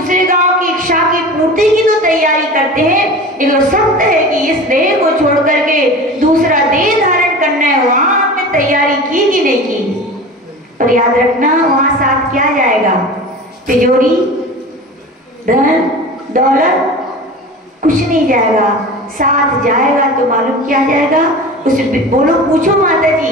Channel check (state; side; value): normal; both; correlation 0.34